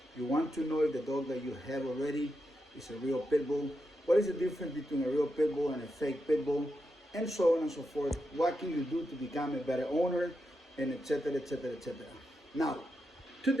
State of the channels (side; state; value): both; normal; correlation 0.87